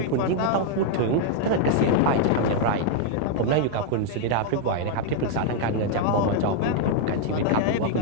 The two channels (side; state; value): both; different; correlation 0.00